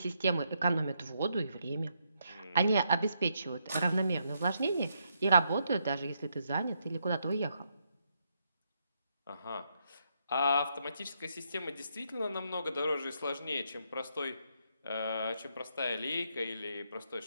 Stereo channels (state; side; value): inverted; both; correlation -0.77